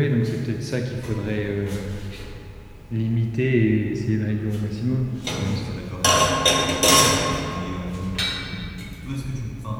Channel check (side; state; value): both; identical; correlation 1.00